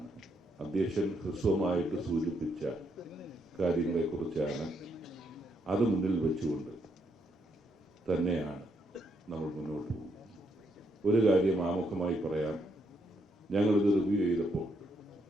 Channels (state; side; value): normal; both; correlation 0.76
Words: അധ്യക്ഷൻ ഹ്രസ്വമായിട്ട് സൂചിപ്പിച്ച കാര്യങ്ങളെക്കുറിച്ചാണ്. അത് മുന്നിൽ വെച്ചുകൊണ്ട് തന്നെയാണ് നമ്മൾ മുന്നോട്ട് പോകുന്നത്. ഒരു കാര്യം ആമുഖമായി പറയാം. ഞങ്ങളിത് റിവ്യൂ ചെയ്തപ്പോൾ